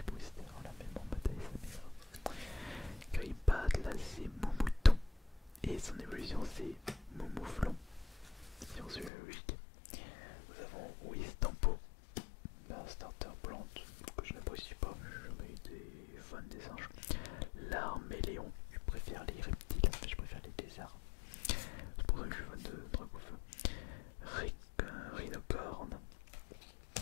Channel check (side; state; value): right; drops out; at 9.1 s